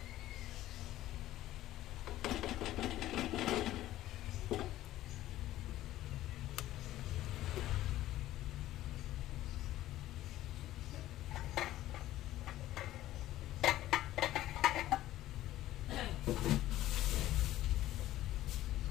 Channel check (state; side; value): quieter; right; 14.5 dB